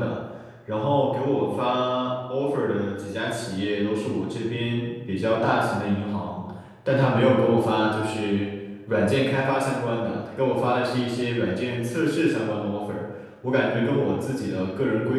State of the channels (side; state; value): both; identical; correlation 1.00